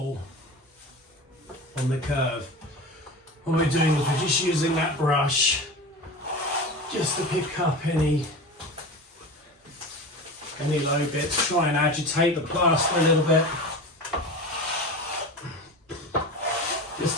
on the curve. What we're doing is we're just using that brush just to pick up any low bits, try and agitate the plaster a little bit just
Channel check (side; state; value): both; normal; correlation 0.30